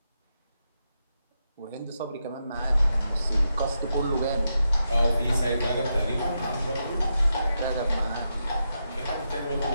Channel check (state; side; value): inverted; both; correlation -0.85